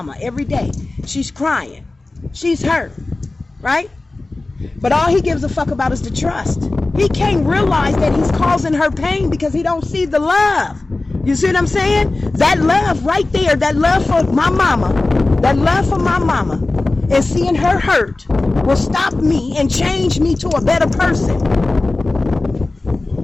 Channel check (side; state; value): right; quieter; 3.1 dB